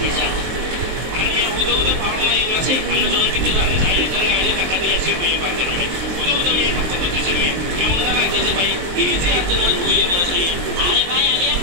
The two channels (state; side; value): late; left; 23 ms